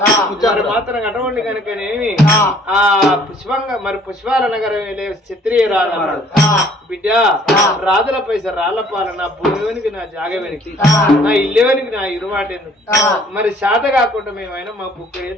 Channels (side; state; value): both; normal; correlation 0.58